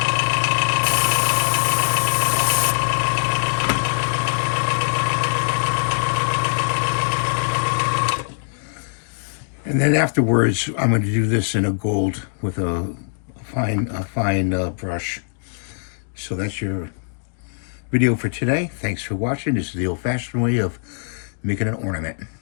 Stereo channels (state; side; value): silent; right; digital silence